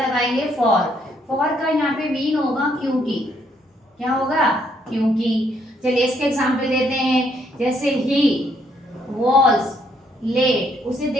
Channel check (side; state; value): both; normal; correlation 0.71